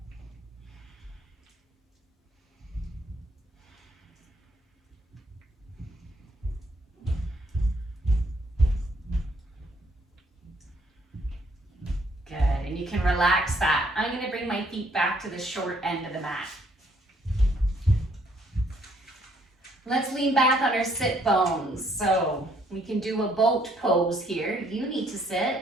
Good, and you can relax that. I'm gonna bring my feet back to the short end of the mat. Let's lean back on our sit bones. So we can do a boat pose here. You need to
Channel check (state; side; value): normal; both; correlation 0.67